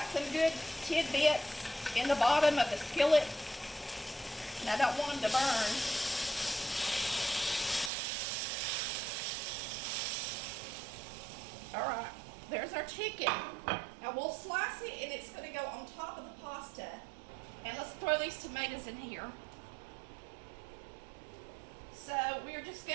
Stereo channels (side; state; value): left; drops out; at 7.9 s